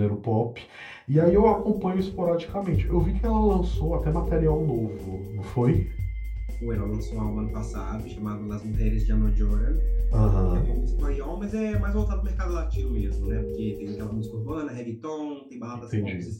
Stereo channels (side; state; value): both; identical; correlation 1.00